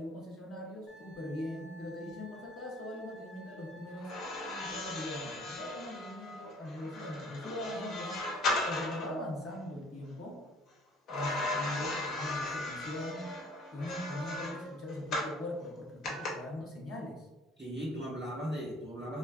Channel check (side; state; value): both; normal; correlation 0.55